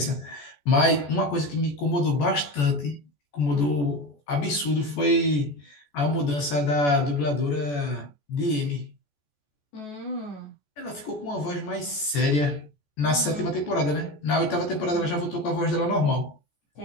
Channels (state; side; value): late; right; 14 ms